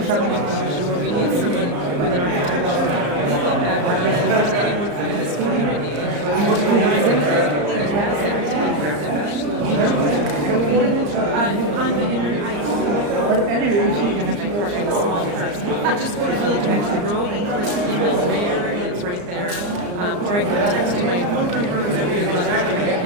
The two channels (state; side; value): late; left; 34 ms